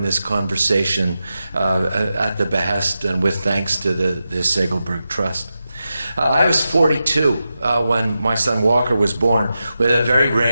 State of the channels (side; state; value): both; inverted; correlation -0.90